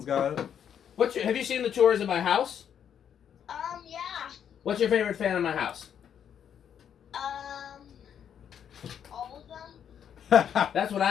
got it. Have you seen the tours of my house? Yeah. What's your favorite fan in my house? All of them. That's what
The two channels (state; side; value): quieter; right; 8.7 dB